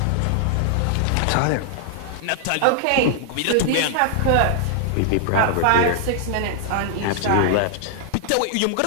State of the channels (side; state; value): both; different; correlation 0.00